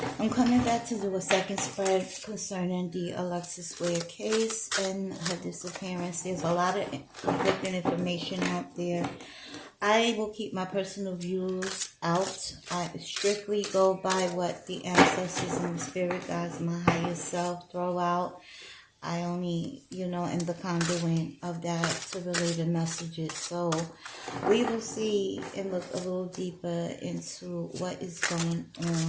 I'm coming back to do a second spread concerning the Alexis Ware case and her disappearance. There's a lot of conflicting information out there. I will keep my personal views out. I strictly go by what the ancestors and the spirit guides, my higher self, throw out. I only, am the conduit of that to relay the messages. So we will see and look a little deeper into what is going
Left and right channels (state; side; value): identical; both; correlation 1.00